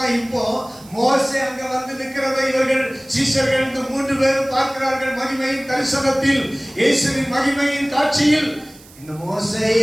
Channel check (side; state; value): right; noise; hiss, 23 dB below the sound